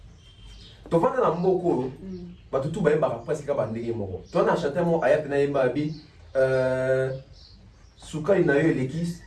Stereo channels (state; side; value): identical; both; correlation 1.00